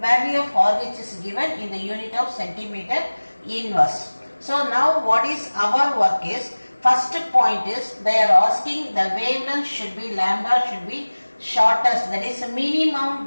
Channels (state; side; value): inverted; both; correlation -1.00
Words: value of RH is given in the unit of centimeter inverse. So now what is our work is, first point is they are asking the wavelength should be lambda should be shortest, that is minimum